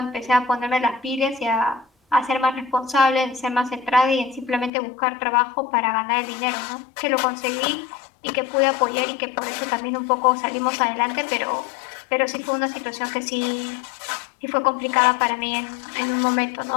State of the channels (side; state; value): right; drops out; at 4.7 s